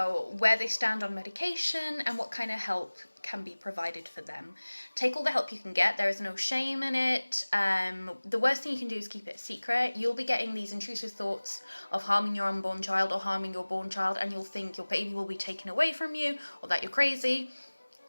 where they stand on medication and what kind of help can be provided for them. Take all the help you can get. There is no shame in it. The worst thing you can do is keep it secret. You'll be getting these intrusive thoughts of harming your unborn child or harming your born child, and you'll think your baby will be taken away from you or that you're crazy.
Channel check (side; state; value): both; inverted; correlation -1.00